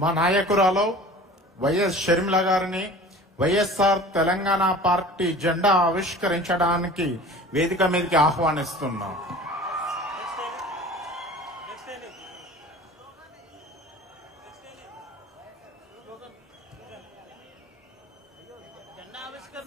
మా నాయకురాలు వైఎస్ షర్మిల గారిని వైఎస్ఆర్ తెలంగాణ పార్టీ జెండా ఆవిష్కరించడానికి వేదిక మీదకి ఆహ్వానిస్తున్నాం. జెండా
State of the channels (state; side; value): normal; both; correlation 0.42